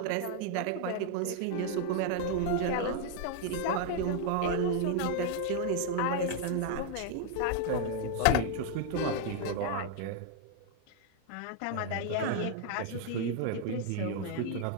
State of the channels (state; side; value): different; both; correlation 0.00